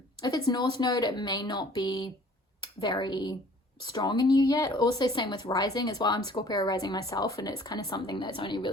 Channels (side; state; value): both; normal; correlation 0.53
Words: it's North Node, it may not be very strong in you yet. Also same with Rising as well. I'm Scorpio Rising myself, and it's kind of something that's only